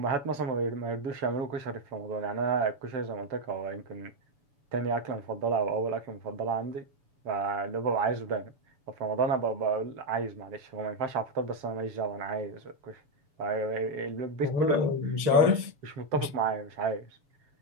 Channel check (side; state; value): left; late; 7.0 ms